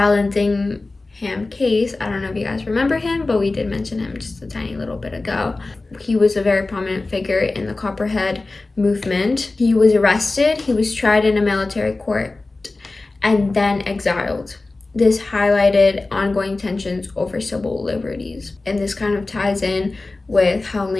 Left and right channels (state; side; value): quieter; right; 3.3 dB